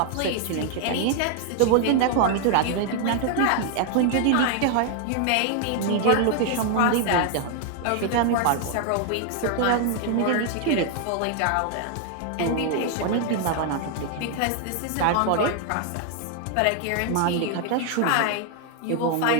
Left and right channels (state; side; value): different; both; correlation 0.00